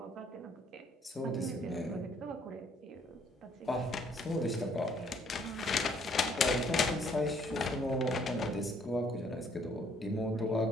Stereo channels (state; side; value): normal; both; correlation 0.64